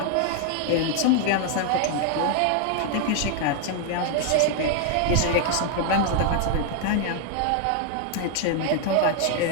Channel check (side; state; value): both; different; correlation 0.00